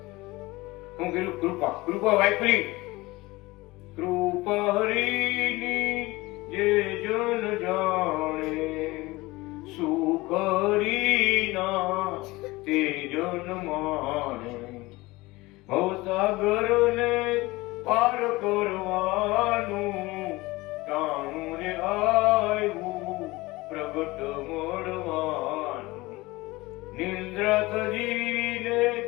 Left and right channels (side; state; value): right; quieter; 21.0 dB